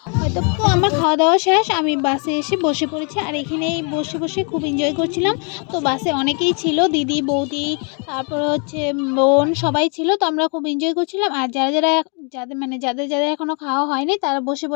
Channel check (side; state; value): right; quieter; 38.0 dB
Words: হয়তো। তো আমার খাওয়া দাওয়া শেষ, আমি বাসে এসে বসে পড়েছি, আর এখানেই বসে বসে খুব এনজয় করছিলাম। তো বাসে অনেকেই ছিল, দিদি, বৌদি, তারপরে হচ্ছে বোন, সবাই ছিল। তো আমরা খুব এনজয় করছিলাম। আর যাদের এখনও খাওয়া হয়নি তারা বসে